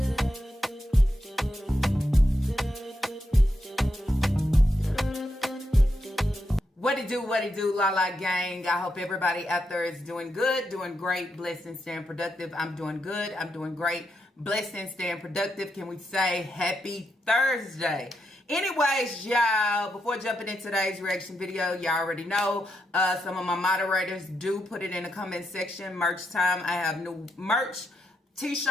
it do, La La Gang. I hope everybody out there is doing good, doing great, blessed, and staying productive. I'm doing good. I'm doing great, blessed, and staying productive. Can we say happy Thursday? Anyways, y'all, before jumping into today's reaction video, y'all already know some of my moderators do put it in the comment section. Merch time. I have new merch,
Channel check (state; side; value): normal; both; correlation 0.82